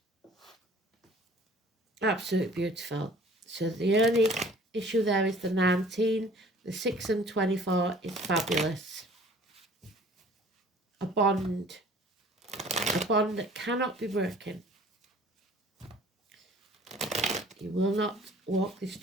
Absolutely beautiful. So the only issue there is the 19. The 6 and 24 is fabulous. A bond that cannot be broken. You will not walk this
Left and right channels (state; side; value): normal; both; correlation 0.52